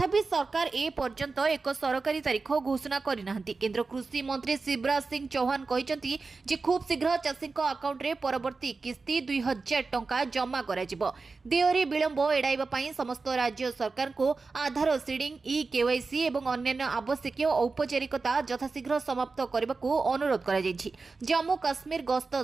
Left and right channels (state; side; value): quieter; left; 4.1 dB